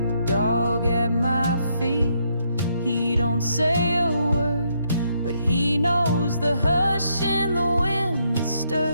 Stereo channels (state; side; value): inverted; both; correlation -0.75